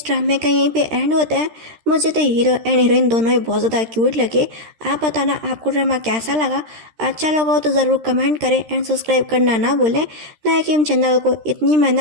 ड्रामे का यहीं पे एंड होता है। मुझे तो हीरो एंड हीरोइन दोनों ही बहुत ज़्यादा क्यूट लगे। आप बताना आपको ड्रामा कैसा लगा। अच्छा लगा हो तो ज़रूर कमेंट करें एंड सब्सक्राइब करना ना भूलें। ना कि हम चैनल को इतनी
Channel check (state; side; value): late; left; 13 ms